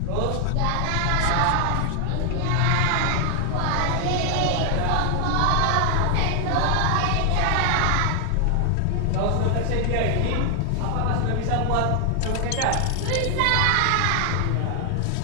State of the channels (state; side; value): different; both; correlation 0.00